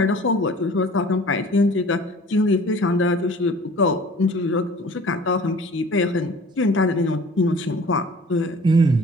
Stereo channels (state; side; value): normal; both; correlation 0.47